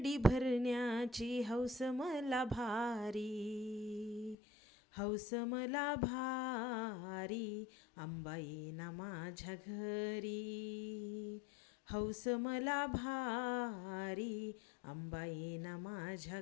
भरण्याची हौस मला भारी. हौस मला भारी अंबा येईना माझ्या घरी. हौस मला भारी अंबा येईना माझ्या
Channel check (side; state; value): right; drops out; at 4.4 s